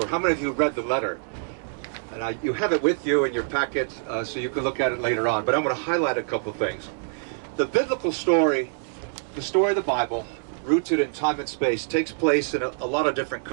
How many of you read the letter? And you have it with you in your packet, so you can look at it later on. But I'm going to highlight a couple things. The biblical story, the story of the Bible, rooted in time and space, takes place in a lot of different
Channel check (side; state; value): left; silent; digital silence